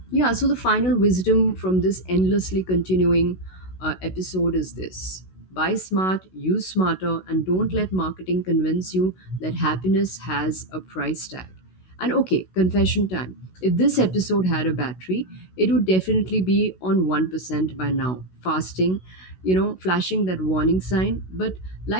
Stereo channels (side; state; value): right; late; 16 ms